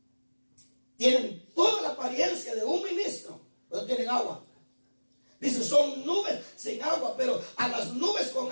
Tienen toda la apariencia de un ministro, pero no tienen agua. Dice, son nubes sin agua. agua, pero a las nubes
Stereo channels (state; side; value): inverted; both; correlation -1.00